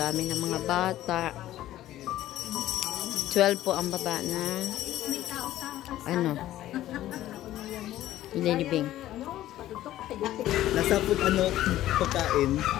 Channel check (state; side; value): quieter; right; 14.0 dB